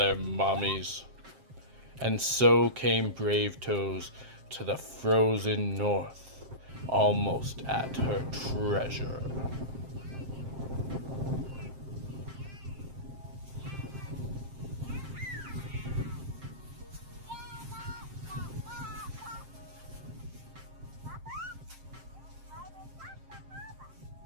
mommies. And so came Bravetoes to the frozen north, almost at her treasure.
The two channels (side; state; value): left; late; 7.6 ms